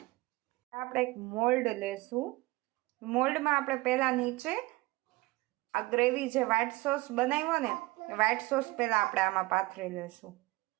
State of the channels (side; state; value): left; quieter; 21.1 dB